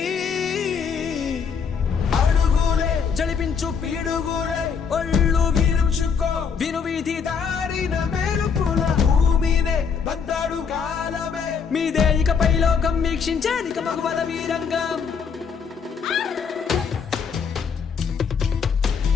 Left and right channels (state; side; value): quieter; right; 6.3 dB